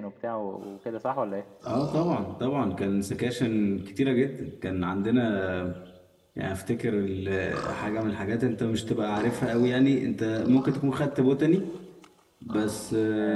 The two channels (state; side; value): identical; both; correlation 1.00